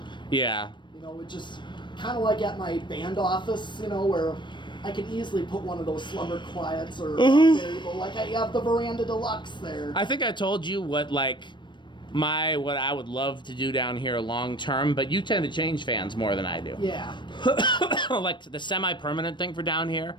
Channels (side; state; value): right; late; 0.22 ms